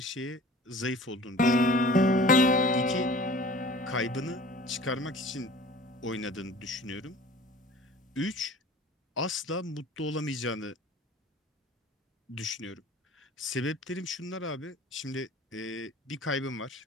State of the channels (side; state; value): both; normal; correlation 0.45